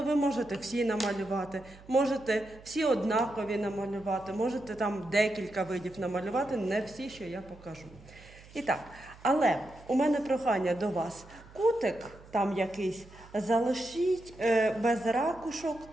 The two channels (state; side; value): noise; right; hum, 21 dB below the sound